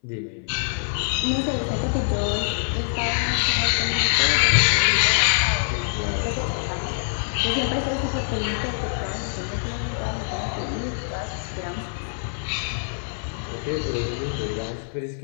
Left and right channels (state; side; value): silent; right; 60 dB below the other